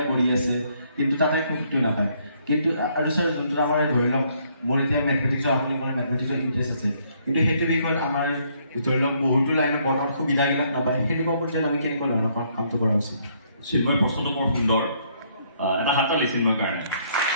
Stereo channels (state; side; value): inverted; both; correlation -0.68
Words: কৰি আছে কিন্তু তাতে সুখটো নাপায় কিন্তু আৰু ছাৰ যোনটো আমাৰ ধৰি লওক মোৰ এতিয়া মেথমেটিক্সৰ আপুনি ক'লে মেথমেটিক্সৰ ইণ্টাৰেষ্ট আছে কিন্তু সেইটো বিষয়ত আমাৰ ধৰি লওক বহুতো লাইনত বৰ্তমান সুবিধাবিলাক নাপায় সেনেকুৱা পৰ্যায়ত আমি কেনেকুৱা ধৰণৰ কামটো কৰা উচিত চিন্ময় প্ৰশ্নটো বৰ সুন্দৰ এটা হাত তালি চিন্ময়ৰ কাৰণে